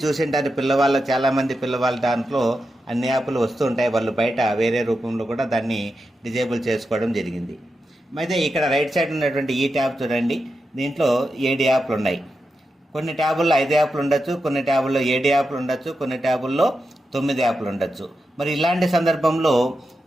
చూసింటారు, చాలామంది పిల్లవాళ్ళ దాంట్లో అన్ని యాప్లు వస్తూ ఉంటాయి. వాళ్ళు బయట వేరే రూపంలో కూడా దాన్ని డిజేబుల్ చేసుకోవడం జరిగింది. అయితే ఇక్కడ రైట్ సైడ్ ఉన్నటువంటి ఈ ట్యాబ్ చూడండి. దీంట్లో 7 యాప్లు ఉన్నాయి. కొన్ని ట్యాబుల్లో 5 యాప్లు ఉండొచ్చు, కొన్ని ట్యాబుల్లో 7 యాప్లు ఉండొచ్చు, కొన్ని ట్యాబుల్లో 9 యాప్లు ఉండొచ్చు. మరి ఇలాంటి సందర్భంలో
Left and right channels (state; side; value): normal; both; correlation 0.88